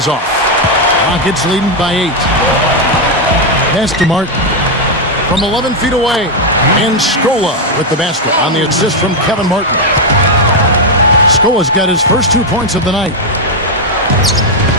off. Rockets leading by 8. Pass to Martin from 11 feet away. And Scola with the basket on the assist from Kevin Martin. Scola's got his first 2 points of the night.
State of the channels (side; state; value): both; normal; correlation 0.02